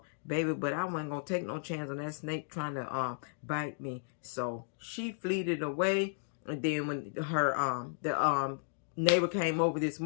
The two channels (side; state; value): right; silent; digital silence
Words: Baby, but I wasn't going to take no chance on that snake trying to bite me. So she fleeted away. And then when the neighbor came over this